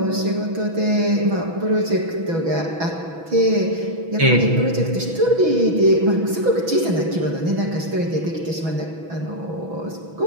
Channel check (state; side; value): late; left; 6.1 ms